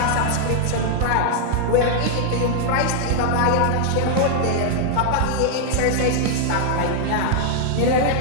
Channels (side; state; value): both; different; correlation -0.01